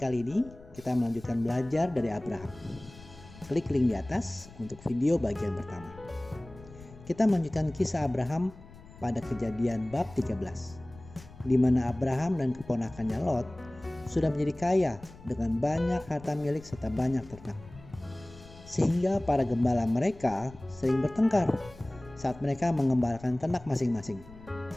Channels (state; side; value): noise; left; rumble, 20 dB below the sound